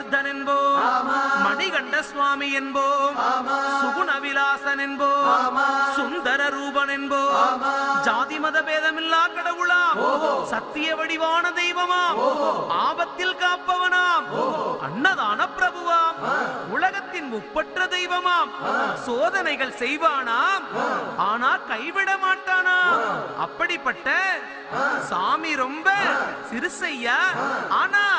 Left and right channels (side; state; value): both; identical; correlation 1.00